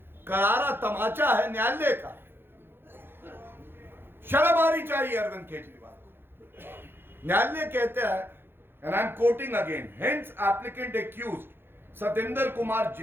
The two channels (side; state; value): left; late; 0.10 ms